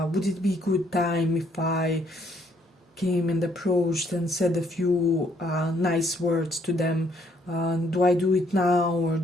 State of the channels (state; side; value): normal; both; correlation 0.67